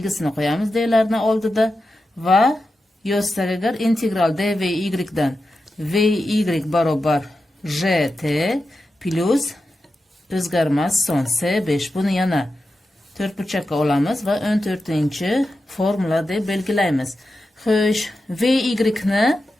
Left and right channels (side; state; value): both; normal; correlation 0.91